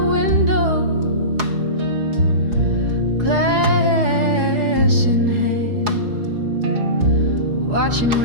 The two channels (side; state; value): left; late; 4.8 ms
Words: glass in hand, watching